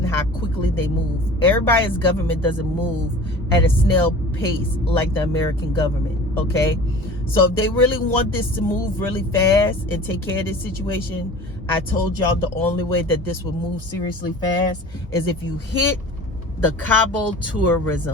how quickly they move. Everybody's government doesn't move at a snail pace like the American government, okay? So if they really want this to move really fast and take care of this situation, I told y'all the only way that this will move seriously fast is if you hit the Cabo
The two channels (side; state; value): both; normal; correlation 0.40